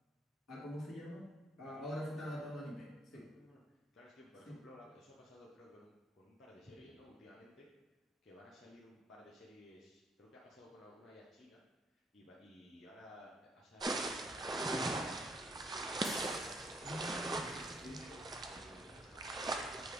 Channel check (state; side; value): normal; both; correlation 0.68